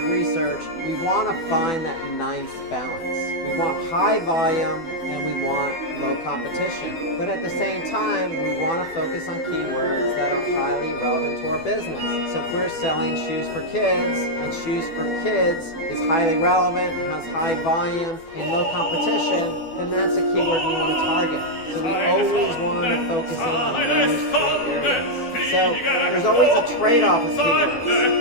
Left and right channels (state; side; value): late; right; 12 ms